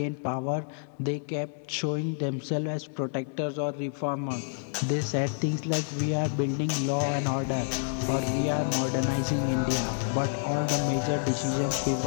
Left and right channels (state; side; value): silent; right; digital silence